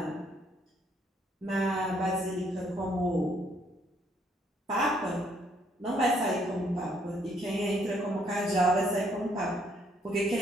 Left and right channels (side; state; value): both; normal; correlation 0.68